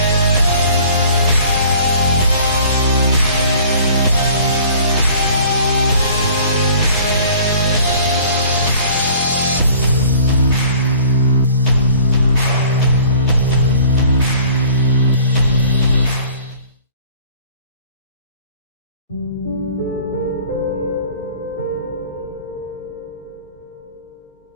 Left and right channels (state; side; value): inverted; both; correlation -0.50